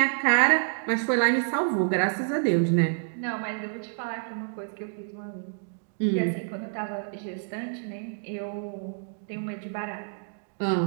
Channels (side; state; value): left; silent; digital silence